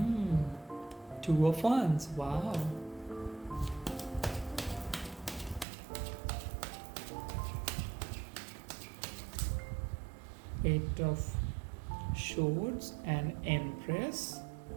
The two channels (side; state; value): left; drops out; at 5.7 s